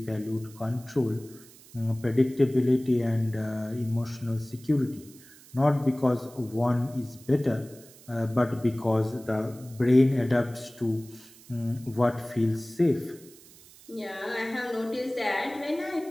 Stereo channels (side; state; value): right; noise; hiss, 22 dB below the sound